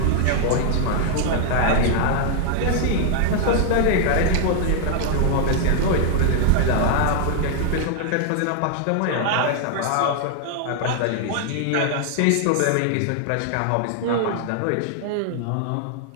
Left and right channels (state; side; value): different; both; correlation 0.00